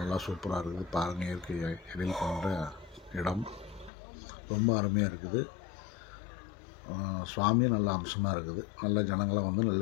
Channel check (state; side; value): drops out; right; at 3.9 s